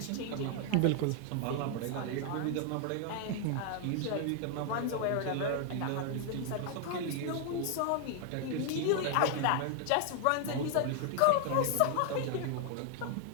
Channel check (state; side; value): different; both; correlation 0.00